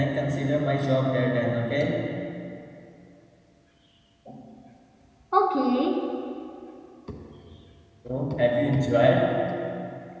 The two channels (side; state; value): both; identical; correlation 1.00